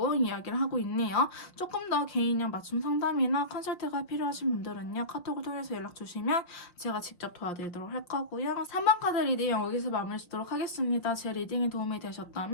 이야기를 하고 있네요. 조금 더 개인형 맞춤 상담이나 컨설트가 필요하신 분들은요, 카톡을 통해서 연락 주시면 제가 직접 도와드리도록 할 거고요. 3번 카드 리딩 여기서 마무리 짓도록 하겠습니다. 제 리딩이 도움이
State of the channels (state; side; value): late; right; 5.7 ms